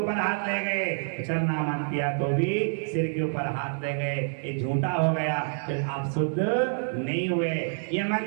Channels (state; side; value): silent; left; digital silence